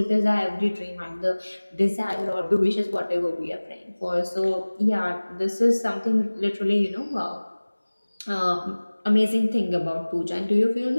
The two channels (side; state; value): both; inverted; correlation -1.00